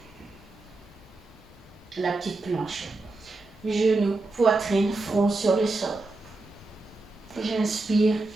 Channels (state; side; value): quieter; left; 3.2 dB